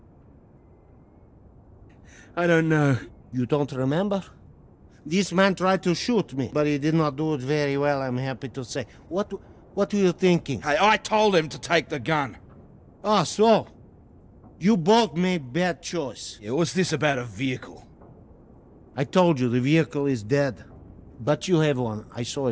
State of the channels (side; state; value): both; identical; correlation 1.00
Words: I don't know. You don't remember? This man tried to shoot me, but he did not do it very well, I'm happy to say. What were you thinking? Hey, I told him to take the gun. Ah, so? You both made bad choice. Yeah, what's this about a vehicle? I told you, the vehicle is dead. But you have one. I saw